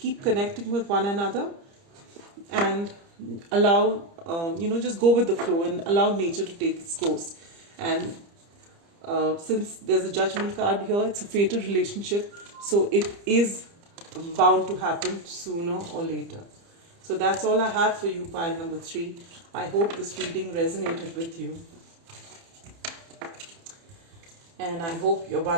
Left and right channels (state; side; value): late; left; 30 ms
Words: connecting with one another, and allow, just go with the flow and allow nature to take its course. And since there's a judgment card here, it's a fated relationship, so it is bound to happen sooner or later. So that's all I have for you, pile number 3. I hope this reading resonated with you. And I hope your